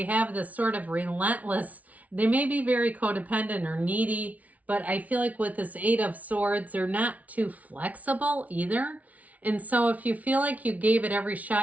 have this sort of relentless, they may be very codependent or needy, but I feel like with this 8 of Swords, they're not too flexible either. And so if you feel like you gave it every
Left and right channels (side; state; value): left; late; 0.070 ms